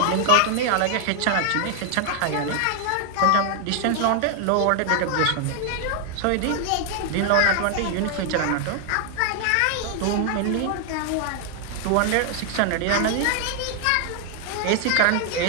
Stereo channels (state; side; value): different; both; correlation 0.00